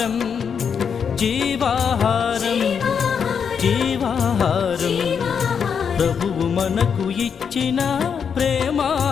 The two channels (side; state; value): right; quieter; 6.9 dB